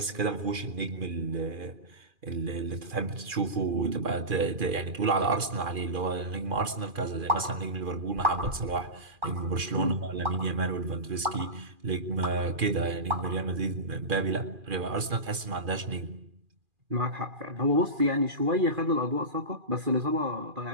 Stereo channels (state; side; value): late; left; 2.4 ms